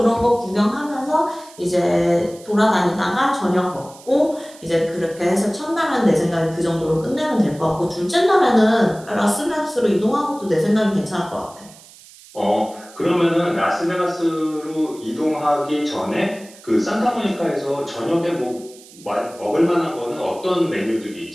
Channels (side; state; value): right; noise; hiss, 22 dB below the sound